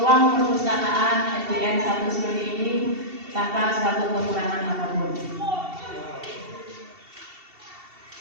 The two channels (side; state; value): left; late; 2.7 ms